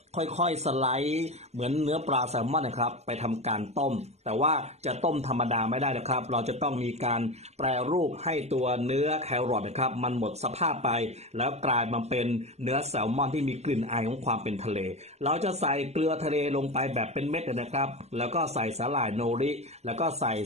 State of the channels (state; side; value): late; left; 0.32 ms